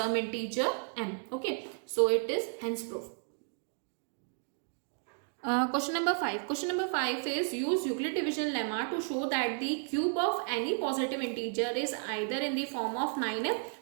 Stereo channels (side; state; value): left; silent; 56 dB below the other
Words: integer m. Okay, so it is hence proof. Question number 5. Question number 5 is use Euclid division lemma to show that the cube of any positive integer is either in the form of 9m